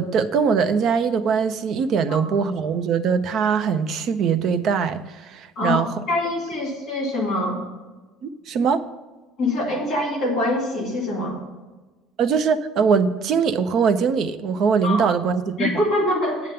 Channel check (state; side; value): quieter; left; 3.8 dB